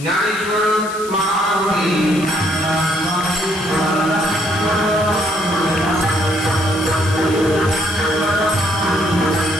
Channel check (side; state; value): left; noise; hiss, 14 dB below the sound